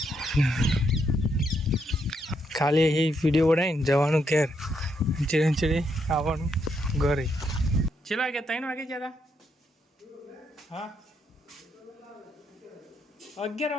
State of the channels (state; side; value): normal; both; correlation 0.77